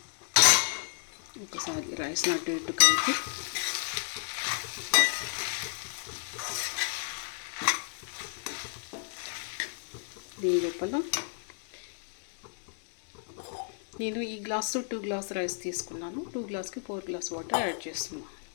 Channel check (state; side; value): silent; right; digital silence